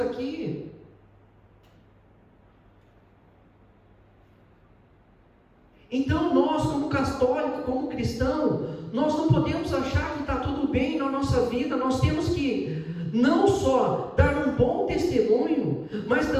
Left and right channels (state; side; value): identical; both; correlation 1.00